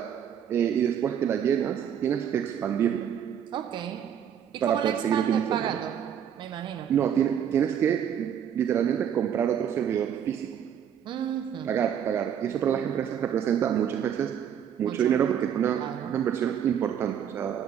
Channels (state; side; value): quieter; left; 8.9 dB